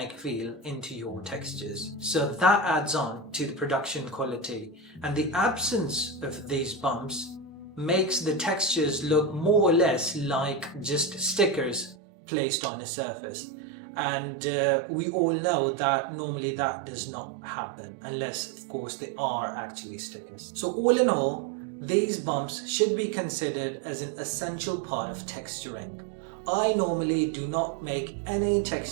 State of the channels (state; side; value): drops out; left; at 12.0 s